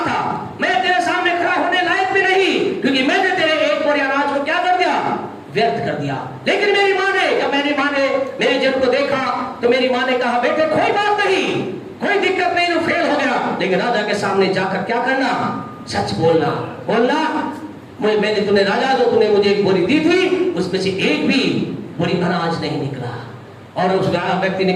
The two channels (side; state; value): both; identical; correlation 1.00